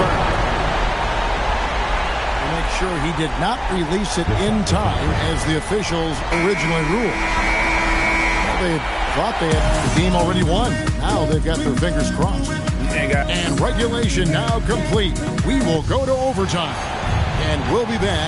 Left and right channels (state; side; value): identical; both; correlation 1.00